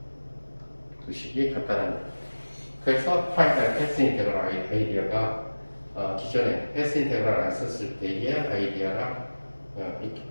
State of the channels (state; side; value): inverted; both; correlation -1.00